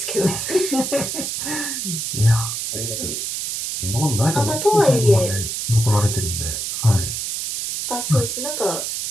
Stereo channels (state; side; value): noise; right; hiss, 3 dB below the sound